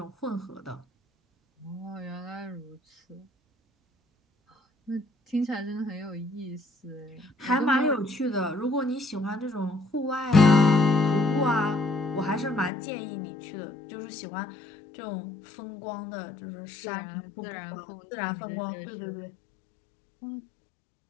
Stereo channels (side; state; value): right; drops out; at 12.7 s